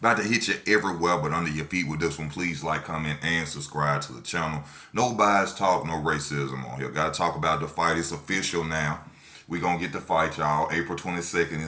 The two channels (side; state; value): both; identical; correlation 1.00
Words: to hit you everywhere but under your feet with this one. Please like, comment, and subscribe to the channel. No bias talk, no racism on here. Gotta talk about the fight. It's official now. We gonna get the fight, y'all. April 22nd